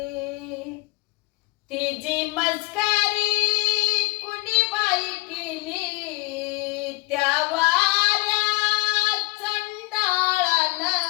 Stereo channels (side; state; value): right; quieter; 23.0 dB